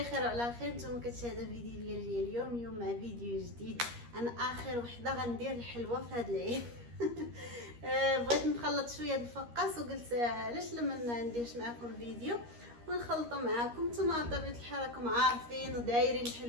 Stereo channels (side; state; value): left; late; 13 ms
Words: وعلى خير. نتوما كتشاهدوا فيديو ديال اليوم مع فيديو جديد. انا اخر وحده غندير الحلوه في هذا العيد. بغيت نخلط شويه د الفقاس وقلت علاش لما ما نديرش معكم الفيديو ونخلطوا معكم. نتوما بطبيعه الحال راكم عارفين ودايرين